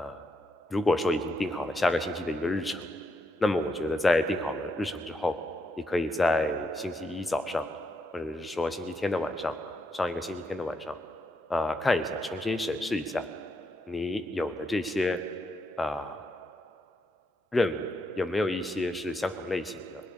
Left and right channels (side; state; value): both; normal; correlation 0.79